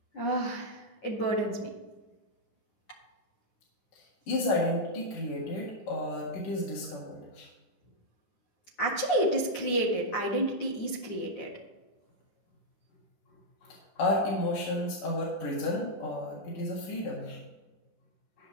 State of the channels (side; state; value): right; late; 9.6 ms